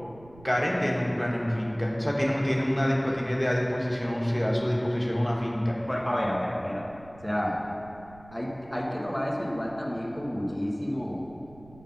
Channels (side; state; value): right; noise; rumble, 22 dB below the sound